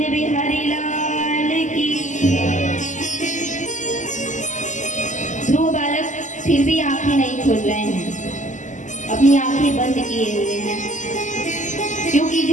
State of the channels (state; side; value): late; right; 0.36 ms